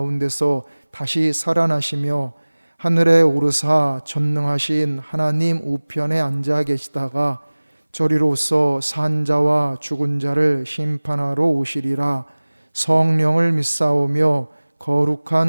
다시 살아나시며 하늘에 오르사 전능하신 하나님 우편에 앉아 계시다가 저리로서 산 자와 죽은 자를 심판하러 오시리라. 성령을 믿사오며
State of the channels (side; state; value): both; inverted; correlation -1.00